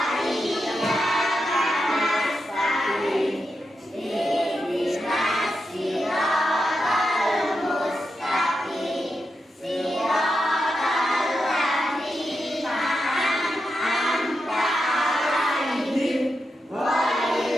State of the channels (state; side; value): normal; both; correlation 0.87